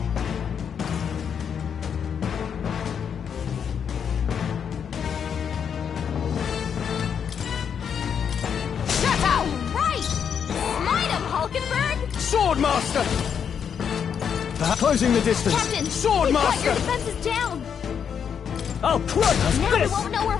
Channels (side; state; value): right; quieter; 7.5 dB